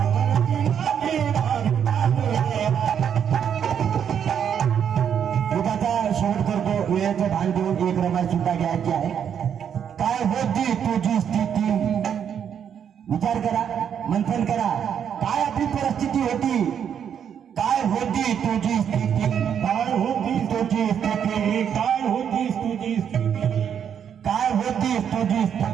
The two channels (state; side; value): quieter; left; 8.3 dB